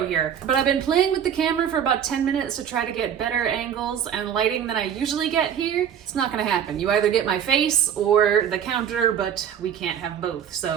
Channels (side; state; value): left; quieter; 8.8 dB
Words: here. But I've been playing with the camera for about 10 minutes to try to get better angles and lighting than I usually get here. It's not gonna happen. You either get my face or the counter, but we can't have both.